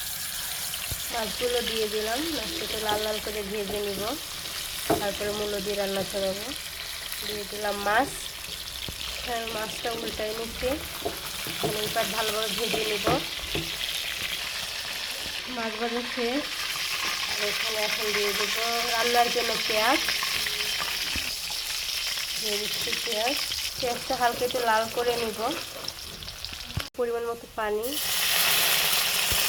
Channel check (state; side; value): identical; both; correlation 1.00